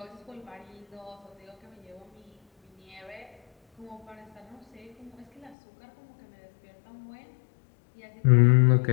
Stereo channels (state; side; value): drops out; right; at 5.6 s